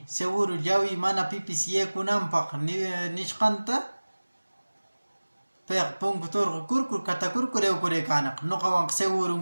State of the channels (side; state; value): both; inverted; correlation -1.00